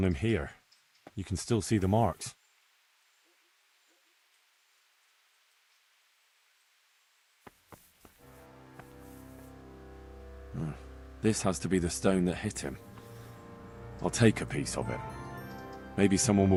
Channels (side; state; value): both; identical; correlation 1.00